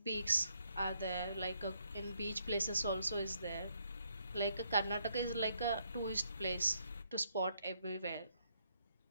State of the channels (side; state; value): both; inverted; correlation -0.73